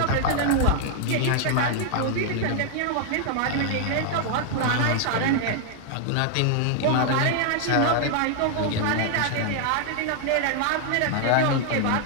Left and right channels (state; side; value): different; both; correlation 0.00